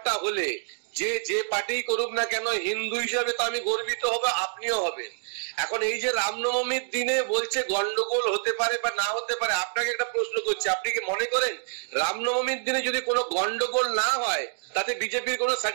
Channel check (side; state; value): left; silent; digital silence